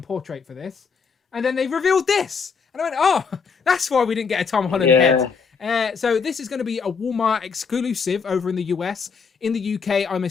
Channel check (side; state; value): right; quieter; 5.6 dB